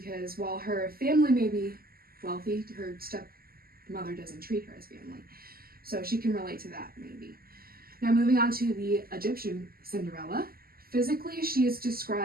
while her family may be wealthy, her stepmother doesn't treat her as family. So she can relate to that maybe. Now moving on to the Egyptian Cinderella. Physically, she is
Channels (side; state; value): left; late; 0.43 ms